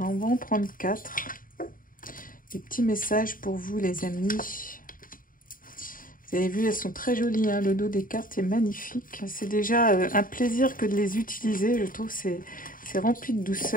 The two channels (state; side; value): late; right; 0.40 ms